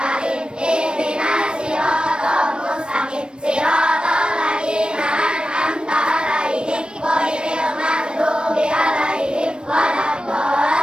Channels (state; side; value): late; left; 0.054 ms